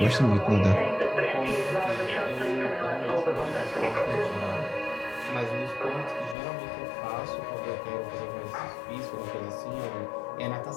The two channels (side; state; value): right; drops out; at 6.4 s